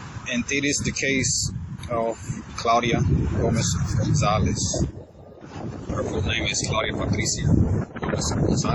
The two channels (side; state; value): both; identical; correlation 1.00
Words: And it is the case of Claudia Gómez González. Her full name is Claudia Patricia Gómez